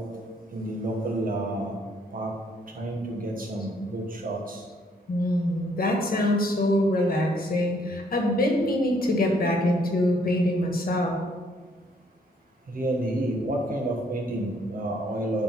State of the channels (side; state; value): both; normal; correlation 0.66